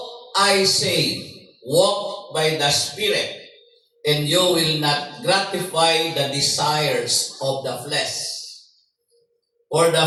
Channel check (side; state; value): both; identical; correlation 1.00